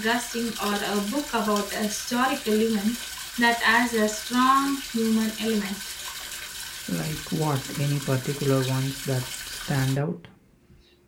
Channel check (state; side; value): identical; both; correlation 1.00